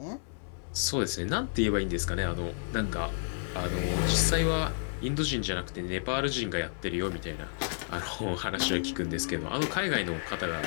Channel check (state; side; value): silent; right; 57 dB below the other